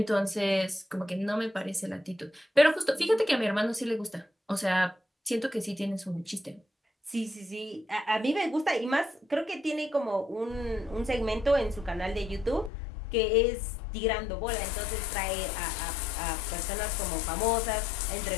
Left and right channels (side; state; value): right; drops out; at 12.7 s